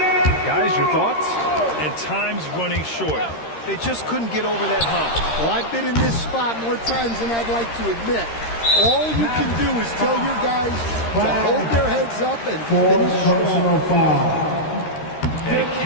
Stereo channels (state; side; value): late; right; 13 ms